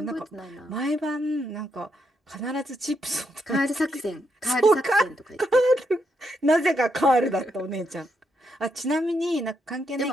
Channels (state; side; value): normal; both; correlation 0.79